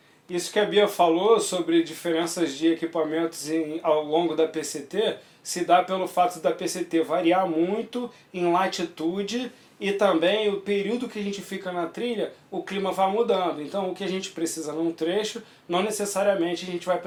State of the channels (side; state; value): both; identical; correlation 1.00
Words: Isso que a Bia falou sobre diferenças de equipamentos ao longo da PCT se dá pelo fato da PCT variar muito em latitude e também o período que a gente fica na trilha, o clima vai mudando. Então o que a gente precisa num trecho, não necessariamente a gente vai